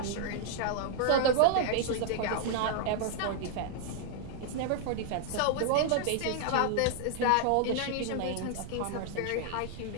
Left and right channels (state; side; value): different; both; correlation -0.01